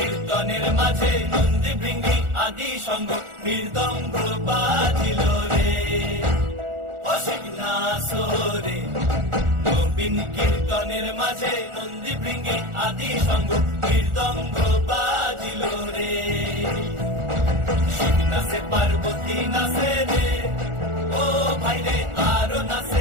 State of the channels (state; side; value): late; left; 1.4 ms